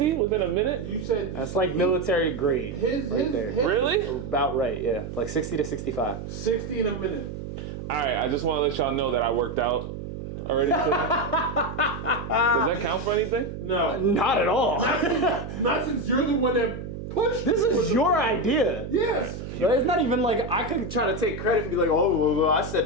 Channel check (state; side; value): noise; right; hum, 8 dB below the sound